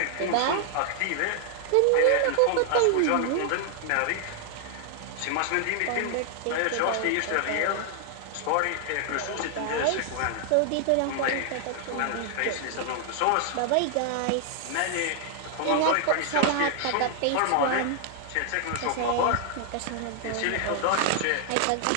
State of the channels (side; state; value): both; different; correlation 0.00